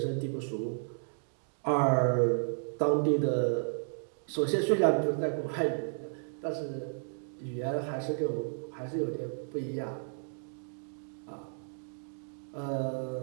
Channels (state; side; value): silent; left; digital silence